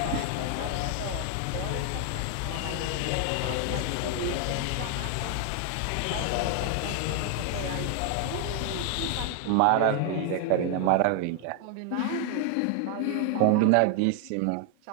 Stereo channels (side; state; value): both; different; correlation 0.00